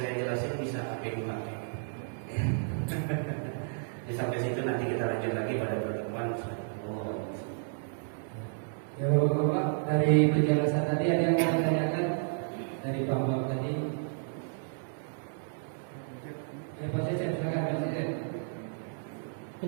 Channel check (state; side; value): silent; left; digital silence